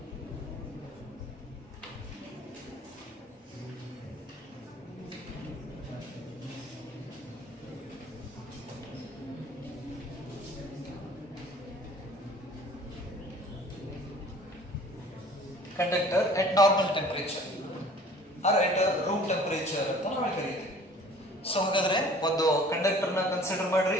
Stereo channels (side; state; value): both; normal; correlation 0.50